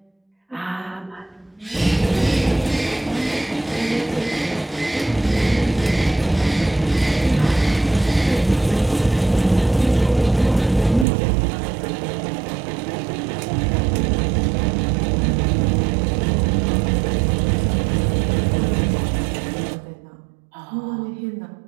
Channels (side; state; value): left; drops out; at 11.1 s